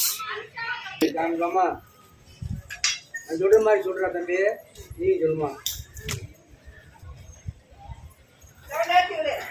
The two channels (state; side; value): identical; both; correlation 1.00